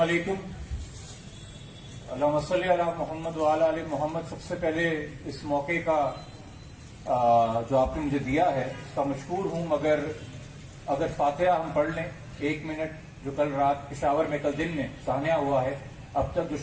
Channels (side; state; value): both; identical; correlation 1.00